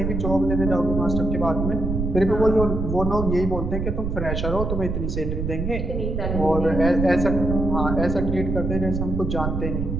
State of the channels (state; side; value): noise; right; rumble, 2 dB below the sound